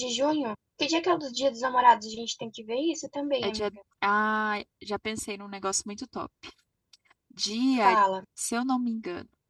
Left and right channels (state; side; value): identical; both; correlation 1.00